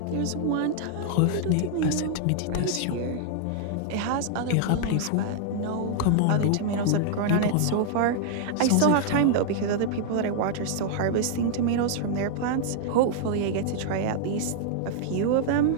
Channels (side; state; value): both; different; correlation -0.01